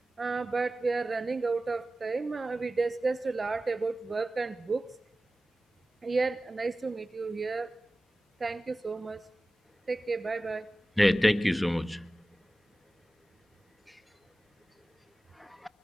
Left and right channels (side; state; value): both; normal; correlation 0.96